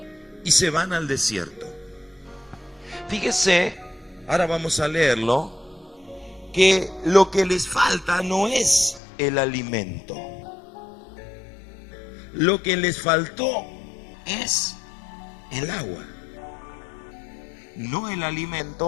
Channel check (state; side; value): drops out; right; at 9.0 s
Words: y se van al desierto? Fíjese, ahora vamos a leerlo, que lo que les falta no es el alimento. Lo que les faltó es el agua. No el